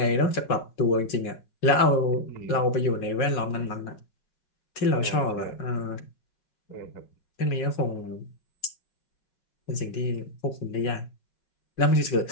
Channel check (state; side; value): late; right; 5.4 ms